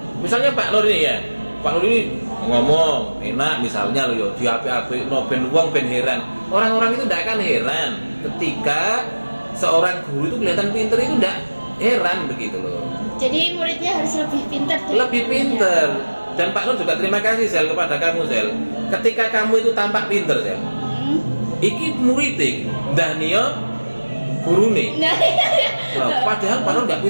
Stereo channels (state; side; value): inverted; both; correlation -1.00